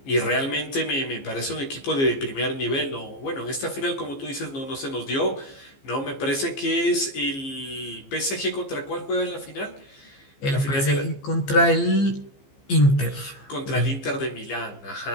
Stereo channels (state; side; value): late; right; 15 ms